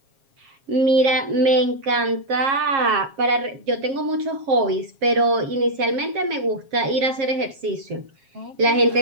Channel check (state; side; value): late; left; 7.4 ms